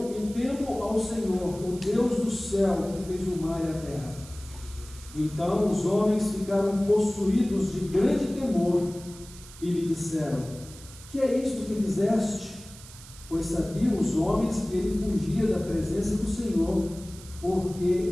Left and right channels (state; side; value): noise; right; hiss, 18 dB below the sound